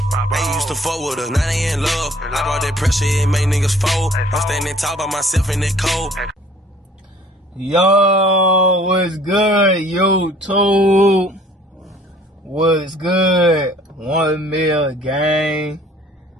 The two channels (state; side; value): normal; both; correlation 0.55